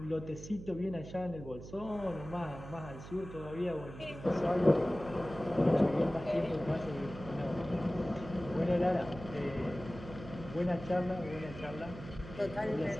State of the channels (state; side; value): noise; right; hum, 13 dB below the sound